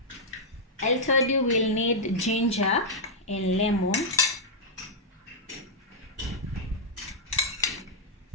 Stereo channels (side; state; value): both; normal; correlation -0.07